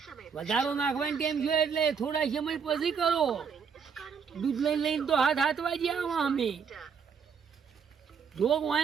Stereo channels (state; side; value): quieter; left; 6.4 dB